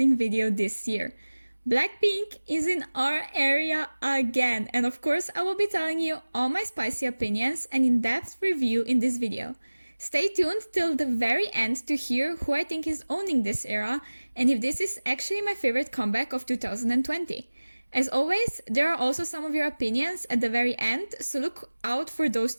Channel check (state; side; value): inverted; both; correlation -1.00